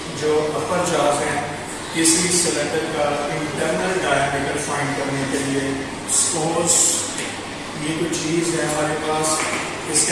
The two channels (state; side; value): identical; both; correlation 1.00